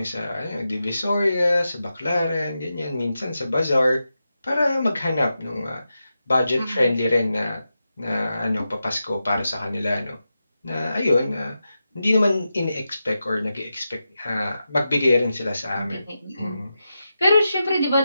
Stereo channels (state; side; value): inverted; both; correlation -0.90